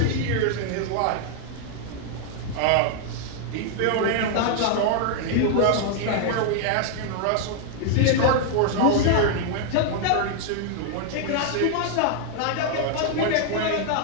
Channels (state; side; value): different; both; correlation 0.00